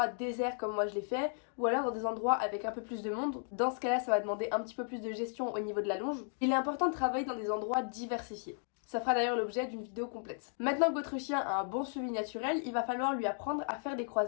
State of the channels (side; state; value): right; silent; 55 dB below the other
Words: déserts comme moi je l'ai fait, ou alors dans des endroits avec un peu plus de monde. Dans ce cas-là, ça va demander un petit peu plus de gestion au niveau de la longe. Il est important de travailler dans des endroits diversifiés. Ça fera d'ailleurs l'objet d'une vidéo complète. Maintenant que votre chien a un bon suivi naturel, il va falloir lui apprendre à faire des